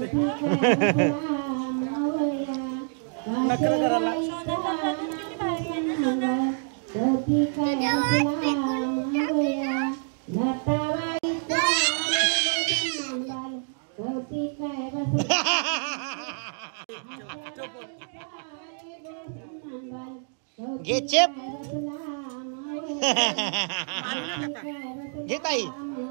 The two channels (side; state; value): left; silent; 60 dB below the other